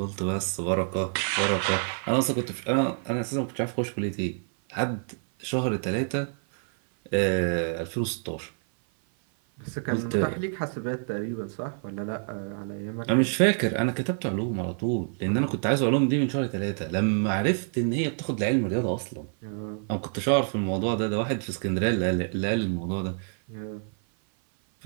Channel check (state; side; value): silent; left; 56 dB below the other